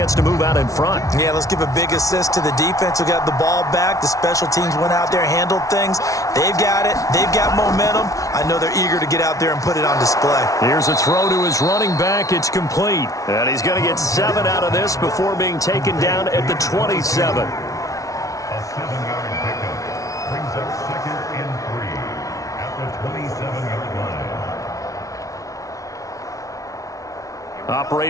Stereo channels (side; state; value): right; late; 0.17 ms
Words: to move out in front. Yeah, let's give a big assist to the defense who got the ball back. The special teams went out there, handled things. They've got it. They've got momentum. I know they're eager to get out there and put it on display. Here's a throw to his running back. It's complete. And he's going to get 7 out of this before being taken down at the 27. A 7-yard pickup brings up 2nd and 3 at the 27-yard line.